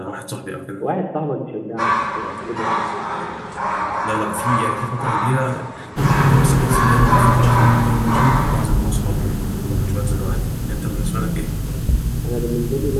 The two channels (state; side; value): identical; both; correlation 1.00